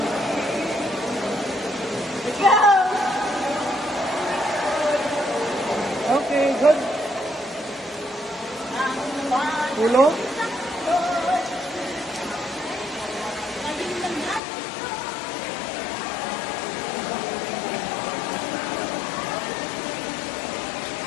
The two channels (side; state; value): right; drops out; at 14.4 s